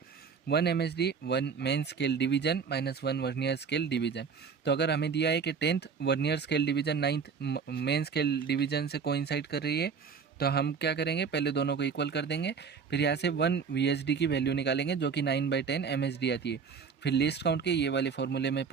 1 MSD 1 main scale division minus 1 vernier scale division. तो अगर हमें दिया है कि 10th vernier scale division 9th main scale division से कोइंसाइड कर रही है, तो हम क्या करेंगे, पहले दोनों को इक्वल कर देंगे। फिर यहाँ से 1 VSD की वैल्यू निकालेंगे जो कि 9/10 MSD आती है। फिर लिस्ट काउंट के ये वाले फॉर्मूले में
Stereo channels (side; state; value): left; quieter; 5.9 dB